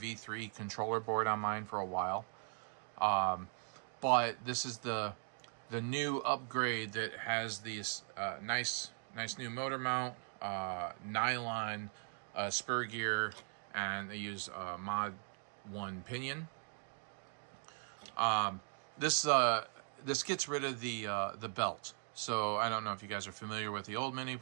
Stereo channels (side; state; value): left; silent; 51 dB below the other